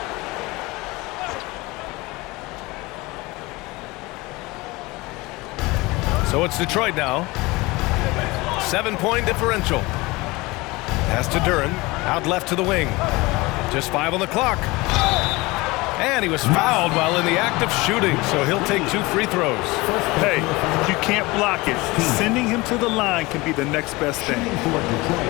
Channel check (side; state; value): right; quieter; 22.6 dB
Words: So it's Detroit now. 7-point differential. Pass to Duren. Out left to the wing. Just 5 on the clock. And he was fouled while in the act of shooting, so he'll take 2 free throws. Hey, you can't block it. Sending him to the line can be the next best thing.